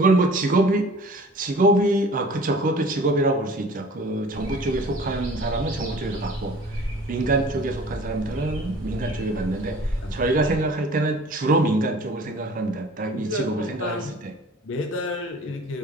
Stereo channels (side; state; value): both; normal; correlation 0.47